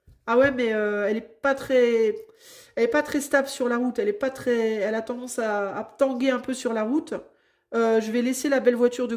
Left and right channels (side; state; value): both; identical; correlation 1.00